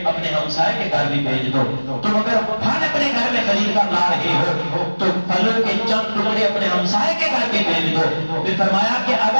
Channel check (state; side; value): inverted; both; correlation -1.00